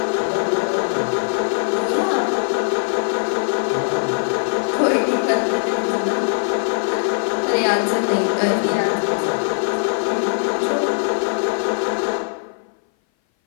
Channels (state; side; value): silent; right; 59 dB below the other